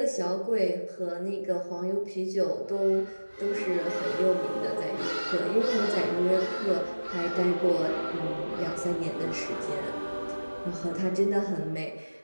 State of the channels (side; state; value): both; inverted; correlation -1.00